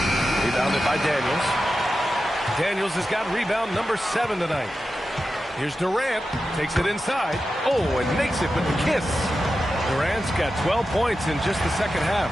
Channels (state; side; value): normal; both; correlation 0.91